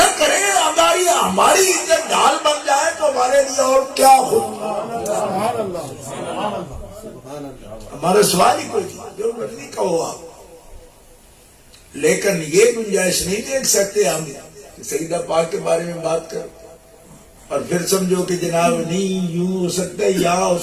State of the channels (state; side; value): identical; both; correlation 1.00